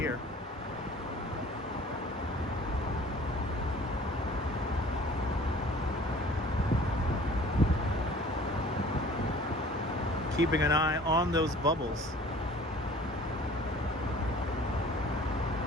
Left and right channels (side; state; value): both; normal; correlation 0.49